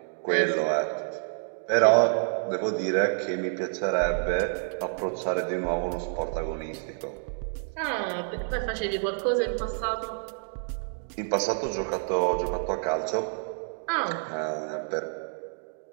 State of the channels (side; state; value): left; silent; digital silence